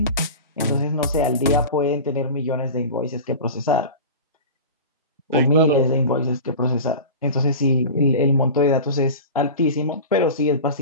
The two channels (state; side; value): inverted; both; correlation -0.32